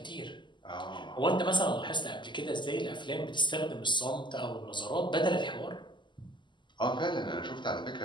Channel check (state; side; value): late; right; 0.22 ms